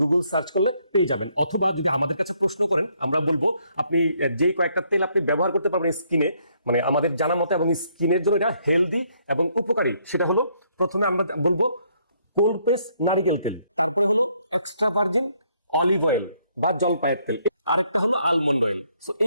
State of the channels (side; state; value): both; inverted; correlation -0.70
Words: গুগল সার্চ করলে পেয়ে যাবেন। অথবা যদি আমাদের কাছে প্রশ্ন করেন, আমরা বলবো আপনি যে কয়েকটা তেল আপনি ব্যবহার করতে পারবেন স্কিনে, মানে আমাদের জানা মতে এবং স্কিনের জন্য এটা হেলদি এবং উপকারী। সেটা হলো, প্রথমে আমরা বলবো কোল্ড প্রেস নারিকেল তেল, তারপরে হলো এক্সট্রা ভার্জিন অলিভ অয়েল বা জলপাইয়ের তেল, আরেকটা হলো আলমন্ড অয়েল। সো